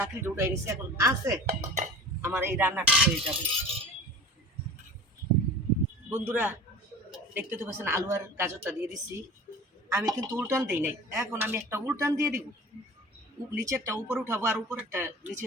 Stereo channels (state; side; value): normal; both; correlation 0.39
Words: উঠাই নিয়েছি, এখন আছে আমার এই রান্নাটা হয়ে যাবে। বন্ধুরা দেখতে তো পাচ্ছেন আলু আর গাজরটা দিয়ে দিচ্ছি, আমি কিন্তু উল্টান দিই নাই। এখন আমি একটা উল্টান দিয়ে দিব, নিচেরটা উপরে উঠাবো আর উপরেরটা নিচে